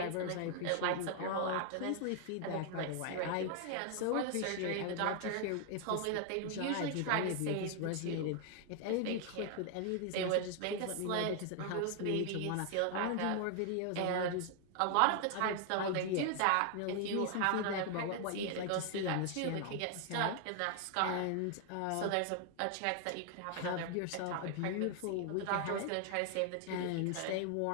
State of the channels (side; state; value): both; different; correlation 0.00